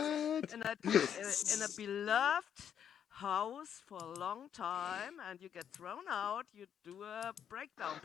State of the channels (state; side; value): quieter; right; 8.7 dB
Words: In a beloved house for a long time, and you get thrown out. You do a breakdown